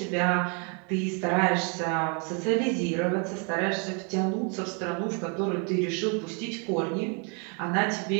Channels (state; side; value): quieter; left; 36.7 dB